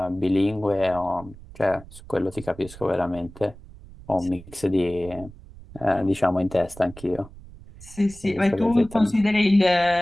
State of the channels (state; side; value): noise; right; rumble, 18 dB below the sound